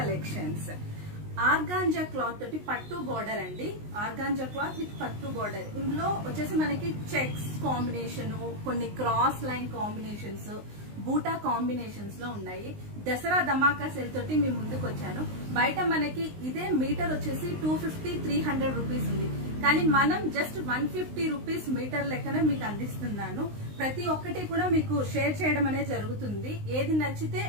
Organza cloth తోటి పట్టు border అండి. ఆర్గాంజా క్లాత్ విత్ పట్టు బోర్డర్. ఇందులో వచ్చేసి మనకి చెక్స్ కాంబినేషన్, కొన్ని క్రాస్ లైన్ కాంబినేషన్స్, బూటా కాంబినేషన్స్ లో ఉన్నాయి. దసరా ధమాకా సేల్ తోటి మీ ముందుకు వచ్చాను. బయట మనకి ఇదే మీటర్ వచ్చేసి 250-300 రూపీస్ ఉంది, కానీ మనం జస్ట్ 150 రూపీస్ మీటర్ లెక్కనే మీకు అందిస్తున్నాను. ప్రతి ఒక్కటి కూడా మీకు షేర్ చేయడం అనేది జరుగుతుంది. ఏది నచ్చితే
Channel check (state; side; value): late; left; 19 ms